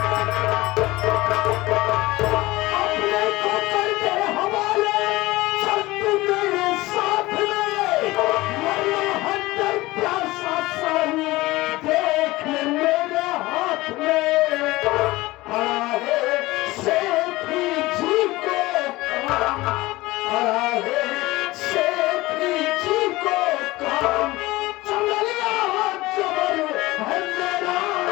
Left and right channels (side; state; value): right; quieter; 19.6 dB